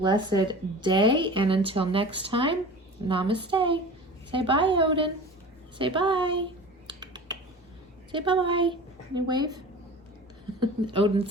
day. And until next time, namaste. Say bye, Odin. Say bye. Say bye-bye. Can you wave? Odin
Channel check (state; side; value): normal; both; correlation 0.37